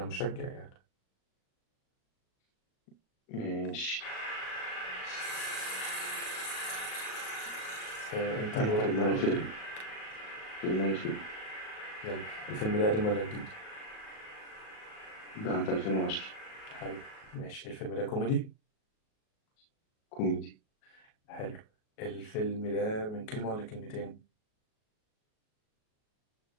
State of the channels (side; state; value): right; late; 37 ms